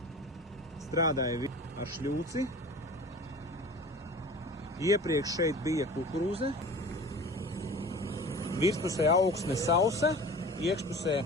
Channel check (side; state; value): both; normal; correlation 0.39